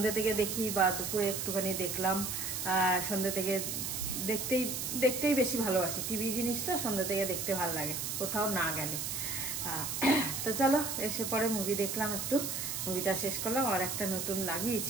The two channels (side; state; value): right; noise; hiss, 3 dB below the sound